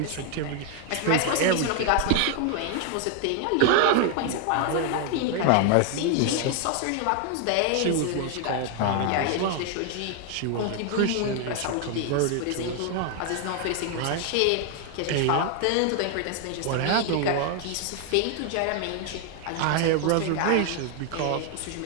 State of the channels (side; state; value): both; different; correlation 0.01